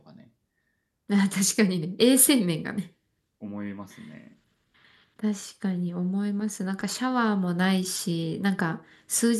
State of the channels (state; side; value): identical; both; correlation 1.00